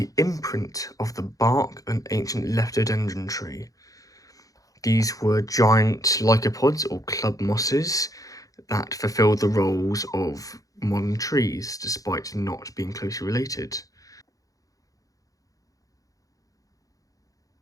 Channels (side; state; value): right; late; 0.17 ms